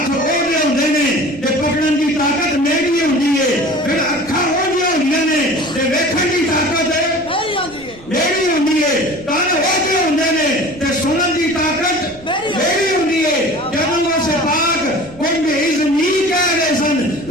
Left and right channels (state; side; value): noise; right; rumble, 22 dB below the sound